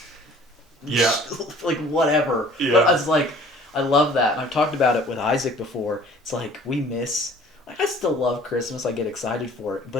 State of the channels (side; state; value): both; normal; correlation 0.51